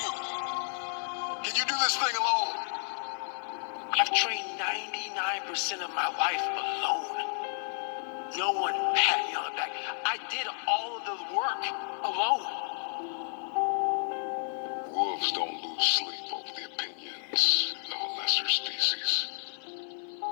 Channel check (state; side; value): silent; right; digital silence